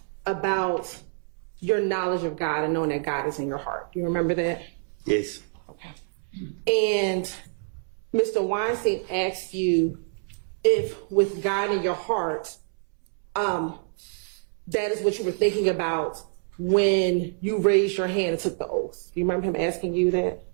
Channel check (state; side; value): silent; left; 61 dB below the other